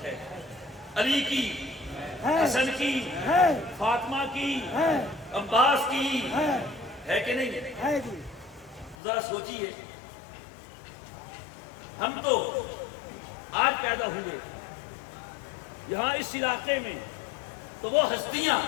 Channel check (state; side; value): drops out; right; at 9.0 s